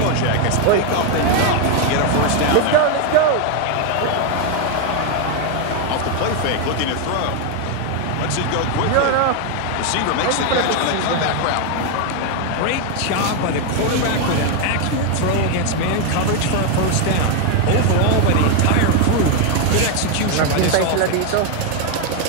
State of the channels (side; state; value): both; different; correlation 0.01